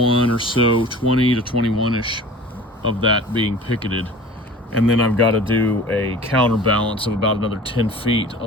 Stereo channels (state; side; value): normal; both; correlation 0.41